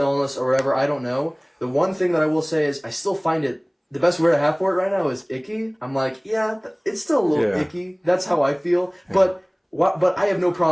or whatever, I don't know. The one thing that I will say is I still find it, the best word I have for it right now is icky. I'm like, yeah, it's still a little icky. That's how I feel. Yeah. But I have no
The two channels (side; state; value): both; identical; correlation 1.00